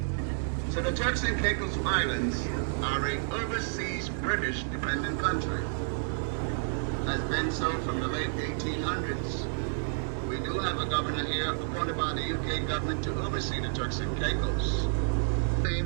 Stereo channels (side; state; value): left; silent; 58 dB below the other